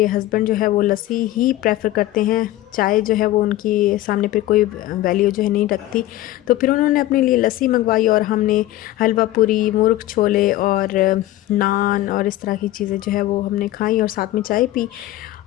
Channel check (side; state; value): right; quieter; 15.4 dB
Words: हस्बैंड जो है वो लस्सी ही प्रेफर करते हैं। चाय जो है वो उनकी सामने पे कोई वैल्यू जो है नहीं रखती। तो फिर उन्होंने अपने लिए लस्सी मंगवाई और हमने हलवा पूरी, मुर्ग छोले और नान और इस तरह की चीज़ें जो है वो हमने खाई और साथ में चाय पी।